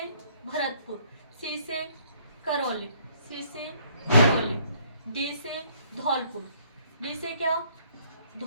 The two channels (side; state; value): both; inverted; correlation -0.64